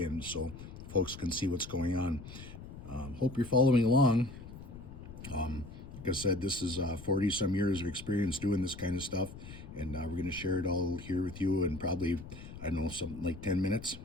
and so folks can see what's going on. Hope you're following along. Like I said, this is 40 some years of experience doing this kind of stuff, and we're going to share it all here with you in probably, I don't know, something like 10 minutes.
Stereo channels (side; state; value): left; noise; rumble, 13 dB below the sound